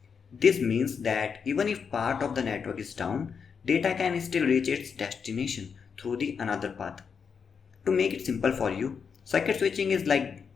This means that even if part of the network is down, data can still reach its destination through the another path. To make it simple for you, circuit switching is like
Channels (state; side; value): quieter; right; 6.3 dB